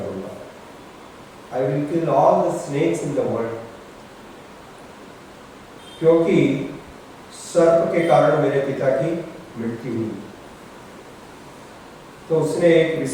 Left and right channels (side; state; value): both; identical; correlation 1.00